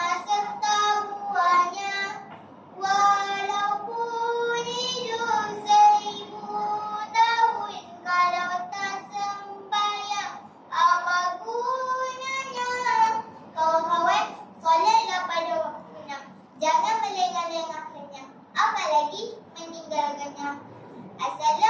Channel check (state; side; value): identical; both; correlation 1.00